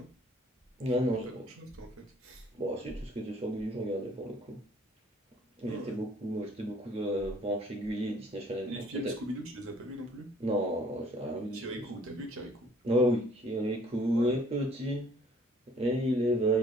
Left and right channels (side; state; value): both; normal; correlation 0.57